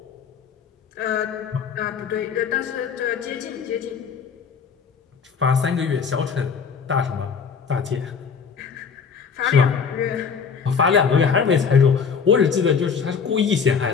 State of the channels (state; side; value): quieter; right; 6.2 dB